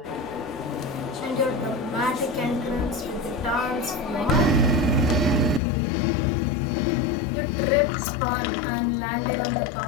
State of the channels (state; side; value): drops out; right; at 5.6 s